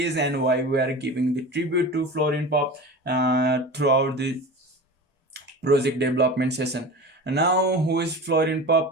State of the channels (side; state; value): both; normal; correlation 0.32